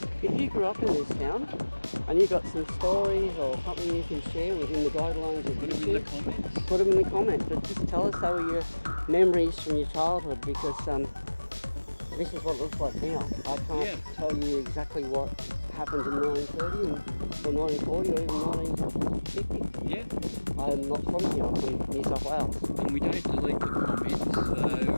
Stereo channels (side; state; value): both; inverted; correlation -1.00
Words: if you grew up in this town and you've got some stories or something you can share within the guidelines of Put them in the comments. Put them in the comments, but just tell us how were your memories from your childhood, because this is what it looks like now. I can't tell you exactly what happened in 1930 or 1940 or even 1950. Yeah. I'm not from here, I'm from New South Wales. And we don't delete the comments, so...